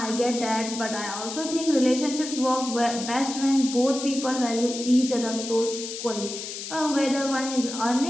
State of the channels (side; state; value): left; noise; hiss, 8 dB below the sound